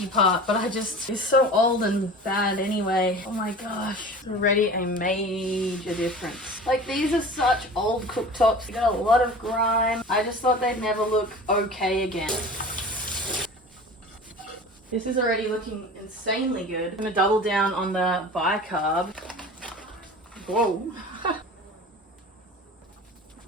part, but it's so old and bad anyway. Oh my gosh, it's already a major difference. Like, these are such old cooktops. They got a lot of grime. I just thought they'd never look okay again. This is already looking insanely good. I'm gonna double down on the bicarb. Whoa.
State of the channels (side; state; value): both; normal; correlation 0.38